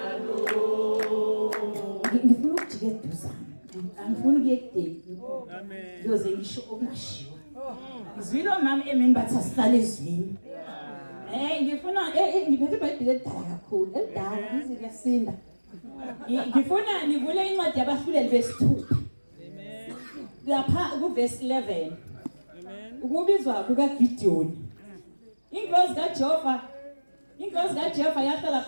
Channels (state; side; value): inverted; both; correlation -1.00